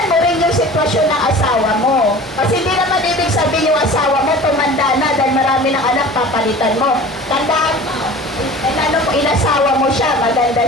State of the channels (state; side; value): normal; both; correlation 0.40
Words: mo rin yung sitwasyon ng asawa mo. Kasi hindi naman ibig sabihin yung asawa mo, tumanda na dahil marami ng anak, papalitan mo. Tandaan, inasawa mo siya, maganda